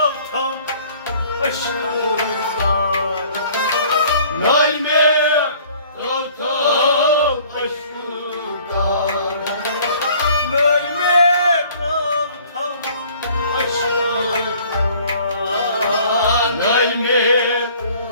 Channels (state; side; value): inverted; both; correlation -0.54